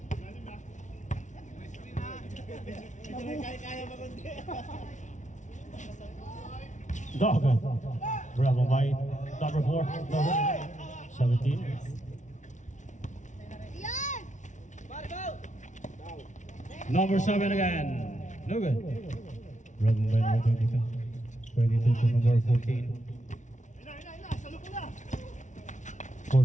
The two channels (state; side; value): late; right; 0.36 ms